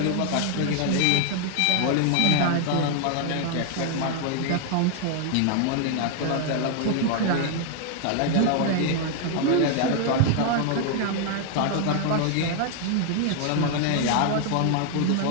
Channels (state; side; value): different; both; correlation 0.00